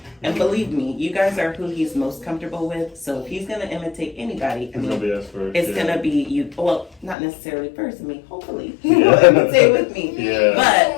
And believe me, you guys are who he's most comfortable with. So if he's gonna imitate anybody, I It's gonna mean, be us first. it's yeah. gonna be you. Well, not necessarily first. I mean, hopefully he Yeah. will imitate with me. Yeah. But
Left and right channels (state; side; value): drops out; right; at 7.2 s